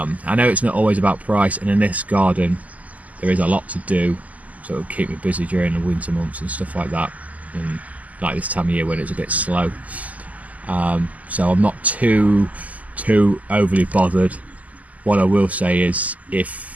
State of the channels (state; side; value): late; left; 0.075 ms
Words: know it's not always about price, and in this garden there is a lot to do, so it'll keep me busy during the winter months and stuff like that, and like this time of year when it's a bit slow. So I'm not too overly bothered. What I will say is,